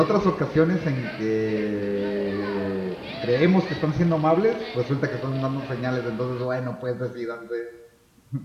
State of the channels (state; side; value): identical; both; correlation 1.00